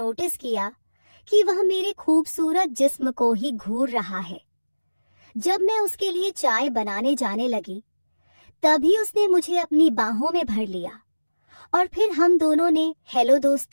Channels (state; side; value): inverted; both; correlation -1.00